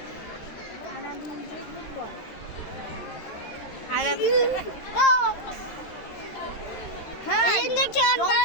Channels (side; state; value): right; late; 13 ms